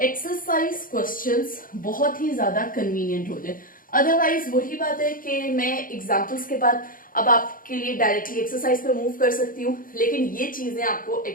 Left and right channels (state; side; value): late; right; 0.40 ms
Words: एक्सरसाइज क्वेश्चंस बहुत ही ज्यादा कन्वीनियंट हो जाए। अदरवाइज वही बात है कि मैं एग्जांपल्स के बाद अब आपके लिए डायरेक्टली एक्सरसाइज पे मूव कर सकती हूँ, लेकिन ये चीजें आपको